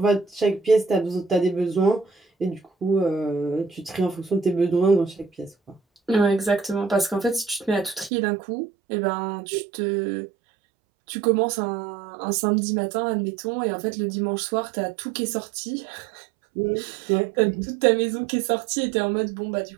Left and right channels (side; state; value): left; drops out; at 8.1 s